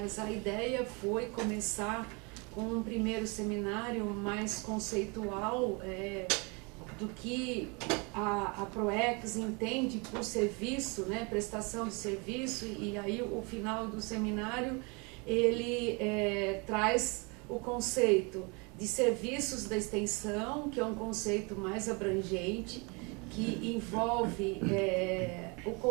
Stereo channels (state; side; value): quieter; left; 30.6 dB